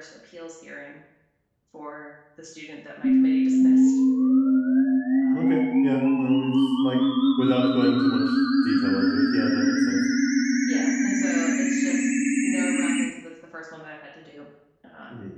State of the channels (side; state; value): both; identical; correlation 1.00